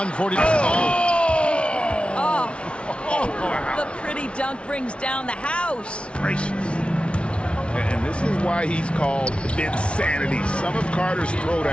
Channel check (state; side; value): late; right; 0.059 ms